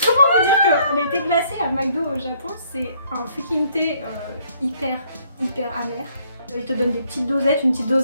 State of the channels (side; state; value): both; inverted; correlation -0.65